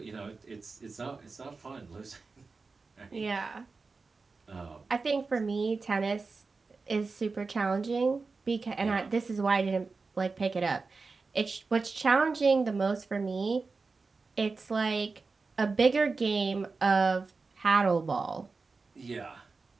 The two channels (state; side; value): quieter; left; 4.2 dB